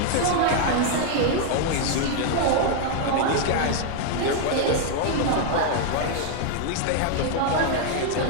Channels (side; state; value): both; different; correlation 0.00